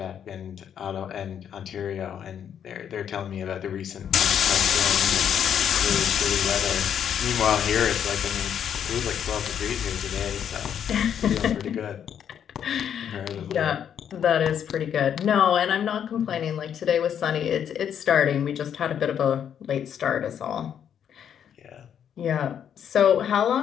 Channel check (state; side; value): quieter; right; 8.8 dB